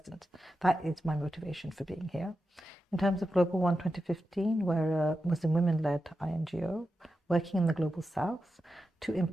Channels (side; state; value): both; normal; correlation 0.90